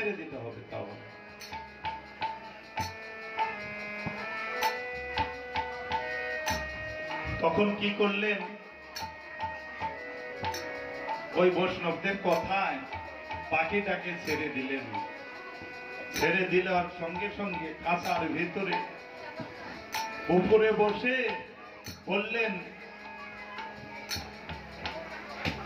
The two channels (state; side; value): identical; both; correlation 1.00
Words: দিতে হবে। তাও তখন কি করলেন, ওই বৈষ্ণবদের কথায় পাখিটাকে ছেড়ে দিলেন। ছেড়ে দেওয়ার সঙ্গে সঙ্গে খাঁচার ভিতরে উপরে বসে বললেন,